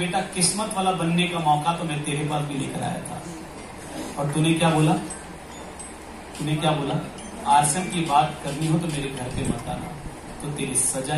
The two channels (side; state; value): both; identical; correlation 1.00